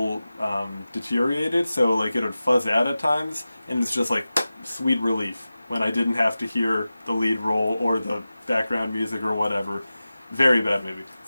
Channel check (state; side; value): inverted; both; correlation -0.95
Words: deteriorated, so like it would fuzz out at times, and it's just like sweet relief when I didn't have to hear the lead role or the background music or whatever. Very bad movie.